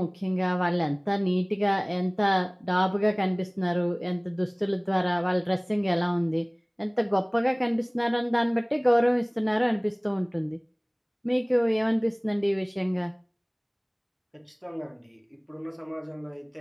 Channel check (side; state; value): both; identical; correlation 1.00